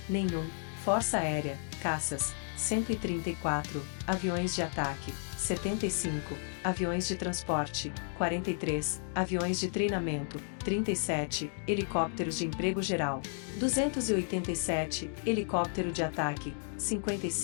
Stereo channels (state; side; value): silent; right; 56 dB below the other